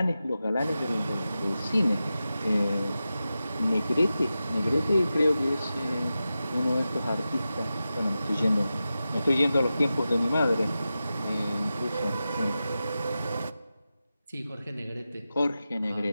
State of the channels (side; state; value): both; inverted; correlation -0.93